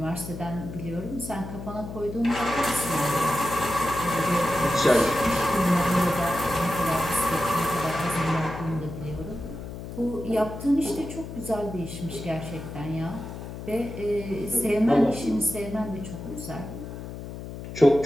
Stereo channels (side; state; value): left; noise; hum, 10 dB below the sound